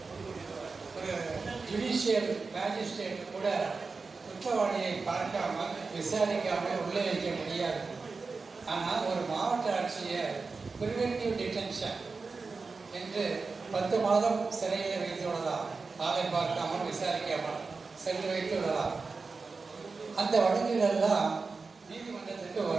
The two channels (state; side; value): quieter; left; 4.3 dB